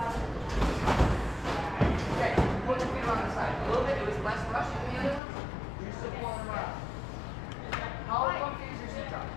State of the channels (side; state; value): right; drops out; at 5.2 s